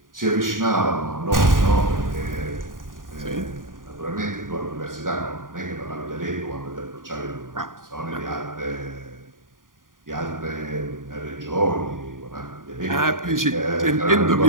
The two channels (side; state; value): left; late; 0.90 ms